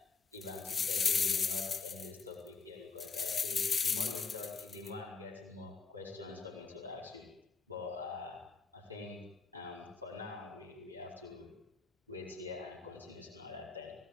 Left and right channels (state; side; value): quieter; right; 4.8 dB